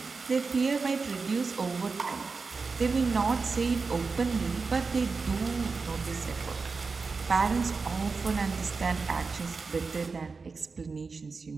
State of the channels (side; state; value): left; quieter; 4.5 dB